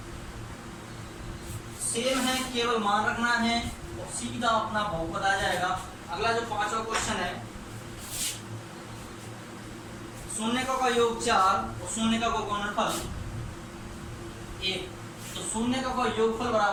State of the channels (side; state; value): both; identical; correlation 1.00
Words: सेम है, केवल मान रखना है और सीधा अपना बहुपद आ जाएगा। अगला जो पांचवा क्वेश्चन है, शून्यकों का योग 4 और शून्यकों का गुणनफल 1। तो शून्यकों का योगफल